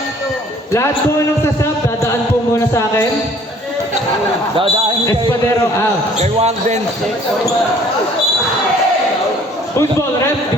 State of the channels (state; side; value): normal; both; correlation 0.56